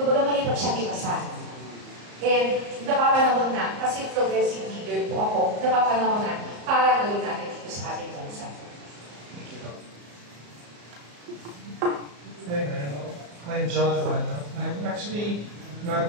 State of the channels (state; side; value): late; left; 34 ms